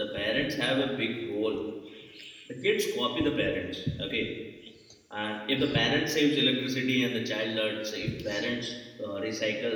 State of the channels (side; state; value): both; identical; correlation 1.00